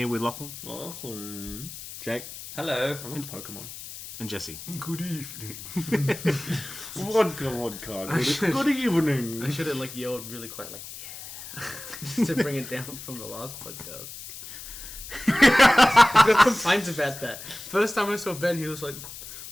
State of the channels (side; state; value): left; noise; hiss, 12 dB below the sound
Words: with Lachlan. Jake. Hello. I'm into Pokemon. And Jesse. Good evening. Vodka. Good evening. I should have yelled really quite yeah. Just to bring it down from the last podcast. I got complaints about that. First time I saw Ben, he was like,